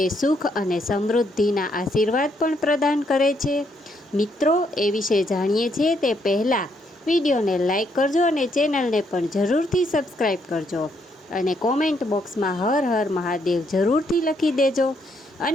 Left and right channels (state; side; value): normal; both; correlation 0.74